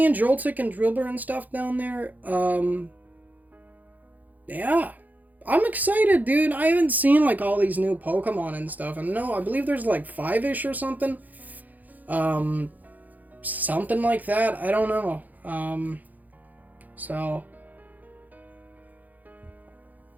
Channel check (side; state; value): left; late; 0.081 ms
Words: Joltik and Drillbur and stuff down there. Yeah. I'm excited, dude. I haven't seen like all these new Pokemon and stuff. And no, I believe there's like 5-ish or something. Something like that. I don't know. So